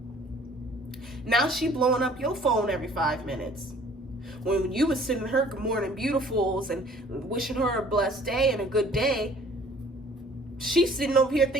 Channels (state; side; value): normal; both; correlation 0.54